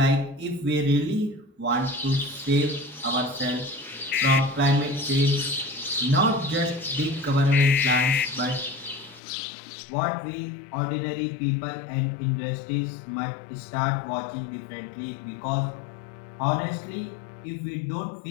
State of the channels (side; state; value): right; drops out; at 9.2 s